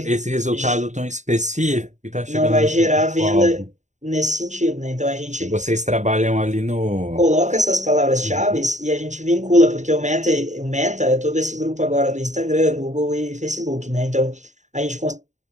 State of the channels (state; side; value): late; left; 0.35 ms